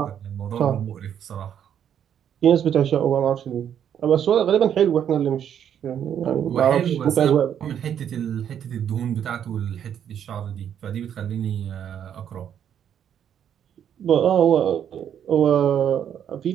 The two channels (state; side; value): quieter; left; 9.2 dB